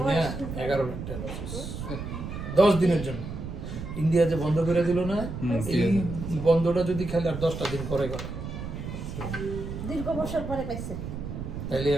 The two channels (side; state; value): right; noise; rumble, 7 dB below the sound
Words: বয়স না, 11 লাখ টাকা লস। 10 দিনের জন্য ইন্ডিয়া যে বন্ধ করে দিল না, এই বন্ধটা যদি খেলে আর 10টা দিন পরে করে, দীর্ঘ বছর পরে পাইছে। তাইলে